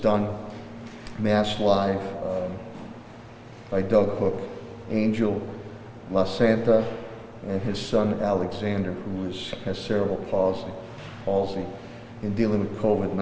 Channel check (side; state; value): both; identical; correlation 1.00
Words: Mass Live, by Doug Hook, Angel La Santa, and his son Alexander, who has cerebral palsy in dealing with